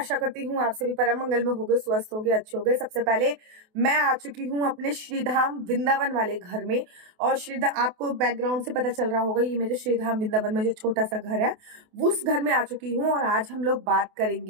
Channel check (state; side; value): late; left; 28 ms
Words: करती हूँ आप सभी परम मंगल में होगे, स्वस्थ होगे, अच्छे होगे। सबसे पहले मैं आ चुकी हूँ अपने श्रीधाम वृंदावन वाले घर में। और श्रीधाम आपको बैकग्राउंड से पता चल रहा होगा, ये मेरे श्रीधाम वृंदावन में जो छोटा सा घर है उस घर में आ चुकी हूँ। और आज हम लोग बात